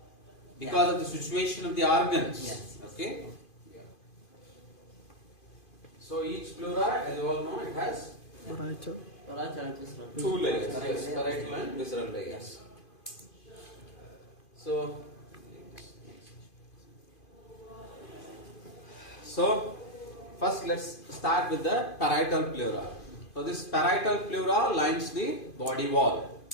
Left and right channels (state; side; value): late; right; 2.5 ms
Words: Because of the situation of the organs. Yes. Okay? So each pleura, as you all know, it has Parietal and visceral. two layers. Yes, parietal and visceral layers. So first let's start with the parietal pleura. So this parietal pleura lines the body wall.